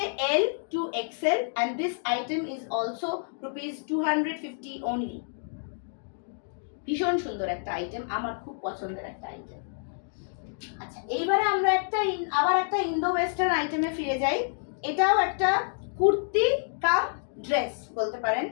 L to XL and this item is also ₹250 only. ভীষণ সুন্দর একটা আইটেম, আমার খুব পছন্দের একটা আইটেম। আচ্ছা, এইবারে আমরা আবার একটা ইন্দো ওয়েস্টার্ন আইটেমে ফিরে যাই। এটাও একটা কুর্তি কাম ড্রেস বলতে পারেন।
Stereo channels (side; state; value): right; silent; digital silence